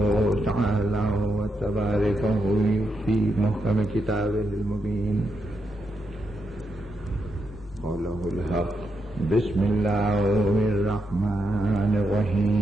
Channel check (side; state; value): both; normal; correlation 0.83